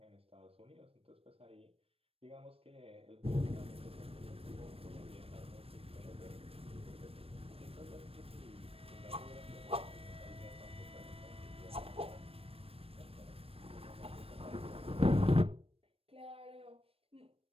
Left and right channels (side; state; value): left; late; 0.28 ms